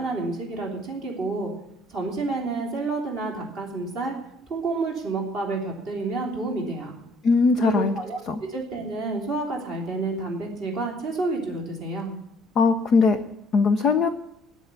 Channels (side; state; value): both; normal; correlation 0.61